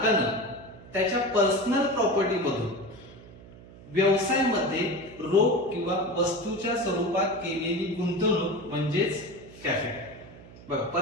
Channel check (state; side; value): noise; right; hum, 19 dB below the sound